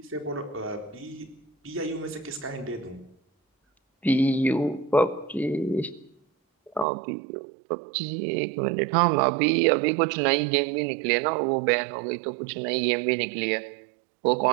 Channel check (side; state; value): left; drops out; at 6.9 s